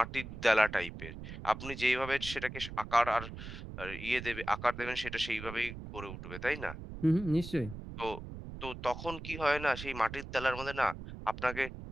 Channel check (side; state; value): right; noise; rumble, 10 dB below the sound